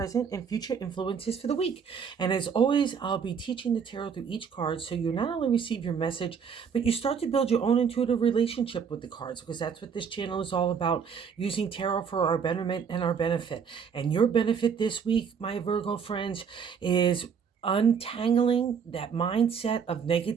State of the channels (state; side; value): quieter; left; 6.7 dB